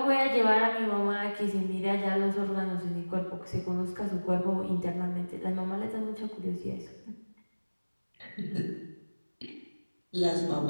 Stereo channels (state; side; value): inverted; both; correlation -1.00